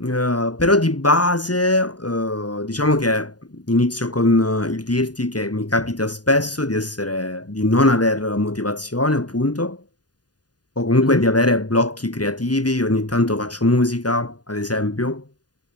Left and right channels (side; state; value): right; late; 0.69 ms